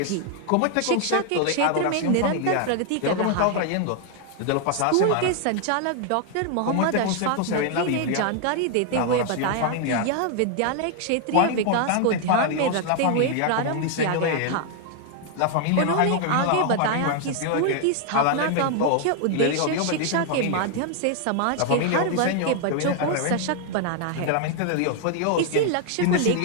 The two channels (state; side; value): different; both; correlation 0.00